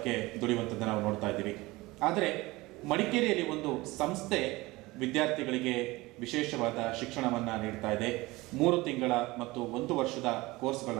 ದುಡಿಯುವಂಥದ್ದನ್ನು ನಾವು ನೋಡ್ತಾ ಇದ್ದೀವಿ. ಆದರೆ ಮಡಿಕೇರಿಯಲ್ಲಿ ಒಂದು ಸಂಸ್ಥೆ ವಿದ್ಯಾರ್ಥಿಗಳಿಗೆ ವಿಶೇಷವಾದ ಶಿಕ್ಷಣವನ್ನು ನೀಡ್ತಾ ಇದೆ. 3 ತಿಂಗಳ ಮತ್ತು 1 ವರ್ಷದ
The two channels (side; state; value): left; quieter; 21.2 dB